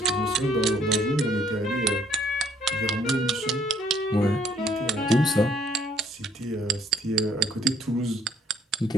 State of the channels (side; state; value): both; normal; correlation 0.64